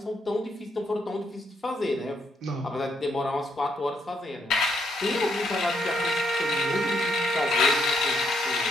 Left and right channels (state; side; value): normal; both; correlation 0.75